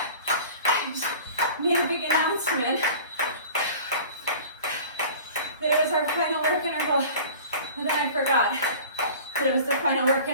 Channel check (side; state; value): both; inverted; correlation -0.42